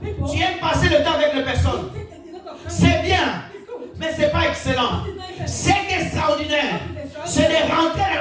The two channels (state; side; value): identical; both; correlation 1.00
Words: tu aimes passer le temps avec les personnes. C'est bien, mais ce n'est pas excellent. C'est extraordinaire. C'est de rentrer dans